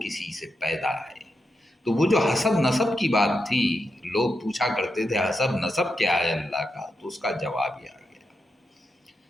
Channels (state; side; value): normal; both; correlation 0.86